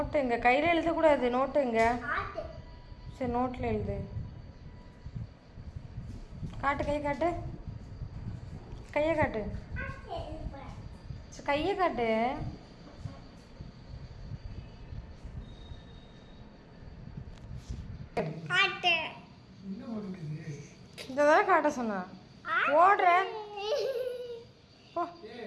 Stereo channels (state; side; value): identical; both; correlation 1.00